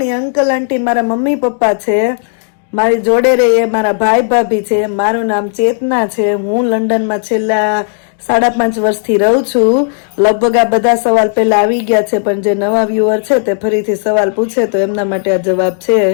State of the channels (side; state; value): right; silent; 65 dB below the other